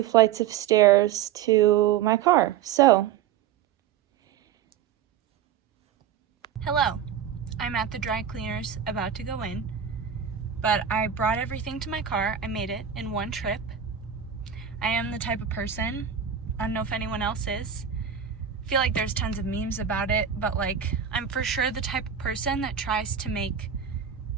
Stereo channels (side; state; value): left; quieter; 8.7 dB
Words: flights of stairs to my car. So, hello. I'm at the dry cleaners about to go in, but I brought everything to my car. I made it in one trip. I am the type of person, I don't know if anyone else is, I feel like there's tons of memes about it, but like I'm for sure the type of person that tries to make